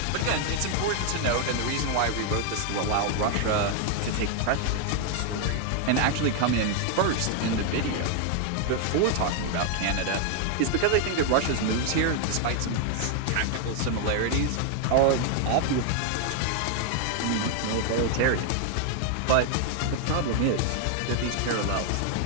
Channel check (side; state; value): both; different; correlation 0.00